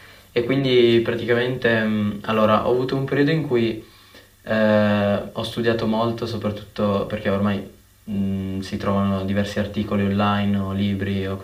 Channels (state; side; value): identical; both; correlation 1.00